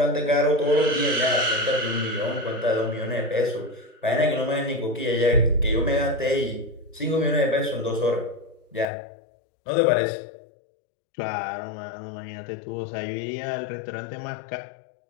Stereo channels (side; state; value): right; drops out; at 8.8 s